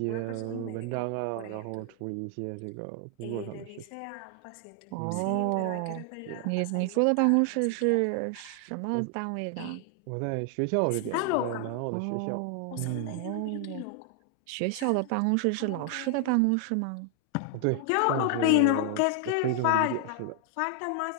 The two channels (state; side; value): different; both; correlation 0.00